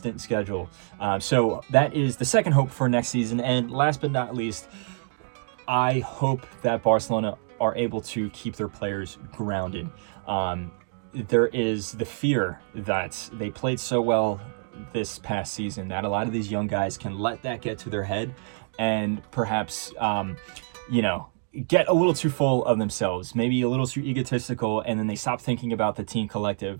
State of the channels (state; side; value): silent; left; digital silence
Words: schedule. So that is the second hope for next season. And last but not least, I hope that Barcelona are able to keep their players grounded. There is the fear that they played so well this past season that a lot of these young guys can let that get to their head and perhaps, you know, get a little too full of themselves, maybe a little too egotistical, and then they stop thinking about the team collective